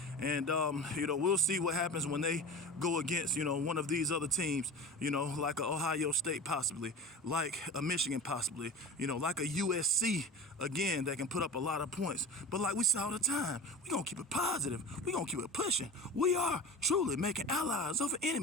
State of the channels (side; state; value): both; normal; correlation 0.34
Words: And, you know, we'll see what happens when they go against, you know, one of these other teams, you know, like a Ohio State possibly, like a Michigan possibly, you know, like a USC, again, that can put up a lot of points. But like we say all the time, we're going to keep it positive. We're going to keep it pushing. We are truly making allies over